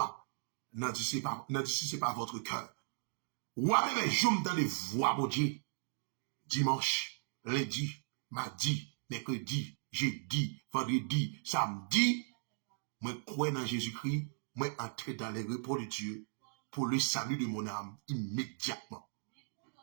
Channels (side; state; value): left; silent; digital silence